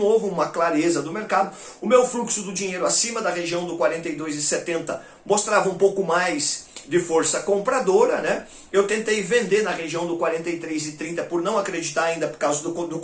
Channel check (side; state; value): both; identical; correlation 1.00